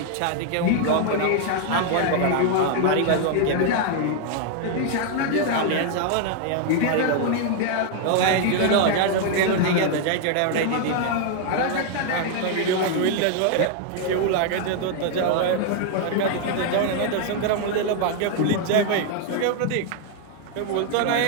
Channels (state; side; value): different; both; correlation 0.00